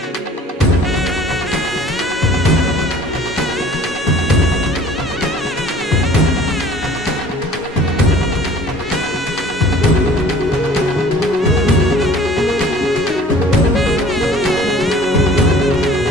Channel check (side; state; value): both; normal; correlation 0.50